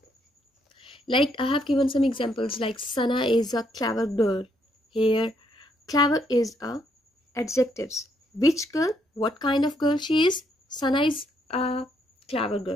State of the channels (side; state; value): both; normal; correlation 0.73